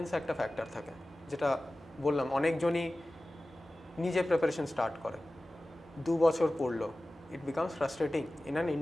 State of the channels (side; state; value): both; normal; correlation 0.96